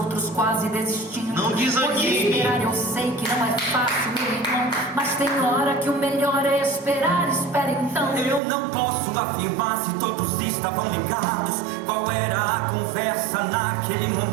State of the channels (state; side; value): drops out; left; at 8.4 s